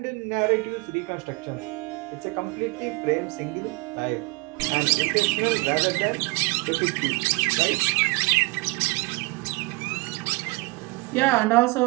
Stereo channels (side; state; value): left; quieter; 25.5 dB